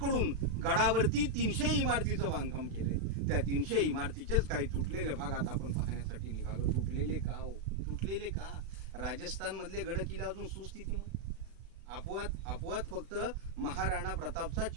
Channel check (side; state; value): left; late; 36 ms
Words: कडून गडावरती 300 इमारतीचं बांधकाम केले. त्या 300 इमारतीचेच काही तुटलेले भाग आता आपण पाहण्यासाठी निघालो. तुटलेले का हो? तुटलेले का? राजस्थान मधले गड किल्ले अजून सुस्थितीमध्ये. अपवाद फक्त महाराणा प्रतापचा